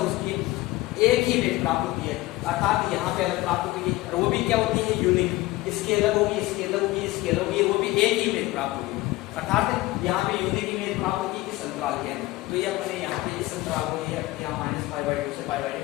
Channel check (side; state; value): right; quieter; 18.7 dB